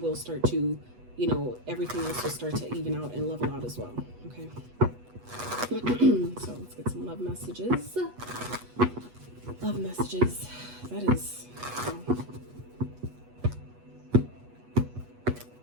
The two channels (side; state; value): left; late; 8.2 ms